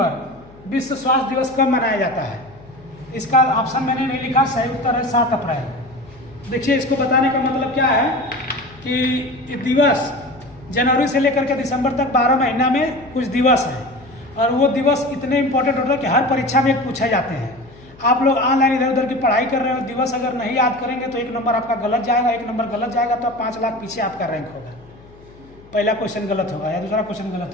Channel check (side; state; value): left; noise; hum, 24 dB below the sound